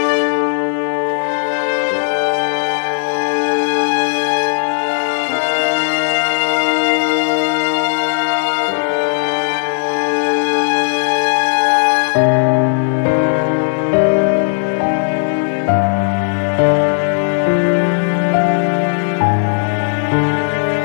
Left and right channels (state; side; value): silent; right; digital silence